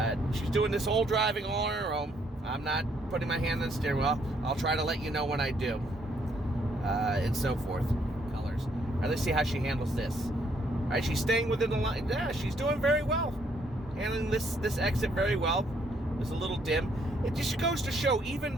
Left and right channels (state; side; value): normal; both; correlation 0.70